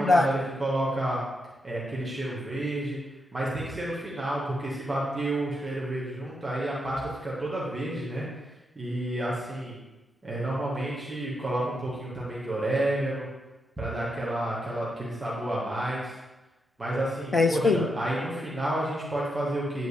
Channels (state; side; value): normal; both; correlation 0.83